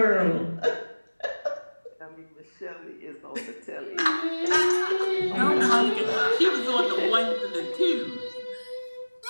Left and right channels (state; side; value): inverted; both; correlation -1.00